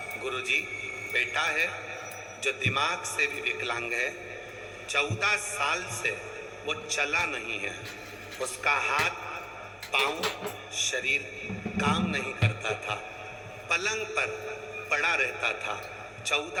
गुरुजी बेटा है जो दिमाग से भी विकलांग है। 14 साल से वो चला नहीं है। उसका हाथ, पांव, शरीर काम नहीं करता था, पलंग पर पड़ा रहता था।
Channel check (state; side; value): identical; both; correlation 1.00